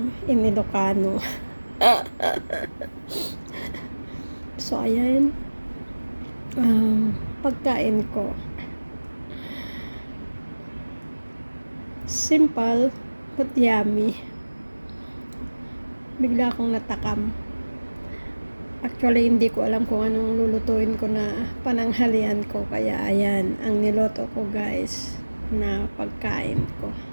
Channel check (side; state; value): both; inverted; correlation -1.00